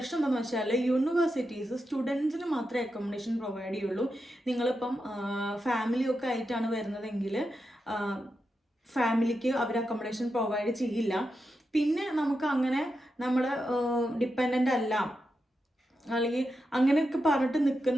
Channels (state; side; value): normal; both; correlation 0.88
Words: എന്താണെന്ന് വെച്ചാൽ യൂണിവേഴ്സിറ്റീസ് സ്റ്റുഡൻസിന് മാത്രമേ അക്കോമഡേഷൻ പ്രൊവൈഡ് ചെയ്യുള്ളൂ. നിങ്ങളിപ്പം ഫാമിലിയൊക്കെ ആയിട്ടാണ് വരുന്നതെങ്കിൽ ഫാമിലിക്ക് അവർ അക്കോമഡേഷൻ പ്രൊവൈഡ് ചെയ്യില്ല. പിന്നെ നമുക്ക് അങ്ങനെ നമ്മൾ ഡിപ്പെൻഡൻ്റ് അല്ല അല്ലെങ്കിൽ അങ്ങനെയൊക്കെ പറഞ്ഞിട്ട്